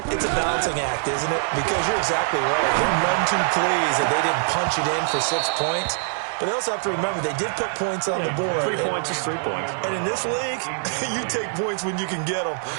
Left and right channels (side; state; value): left; silent; digital silence